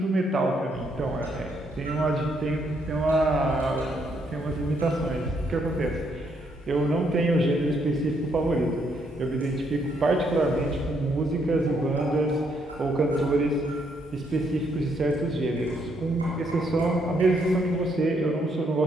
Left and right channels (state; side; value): normal; both; correlation 0.73